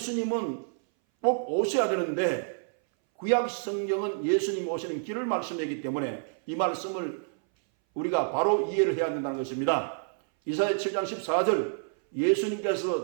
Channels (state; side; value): silent; left; 59 dB below the other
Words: 꼭 오셔야 되는데 구약 성경은 예수님 오시는 길을 말씀하기 때문에 이 말씀을 우리가 바로 이해를 해야 된다는 것입니다. 이사야 7장 14절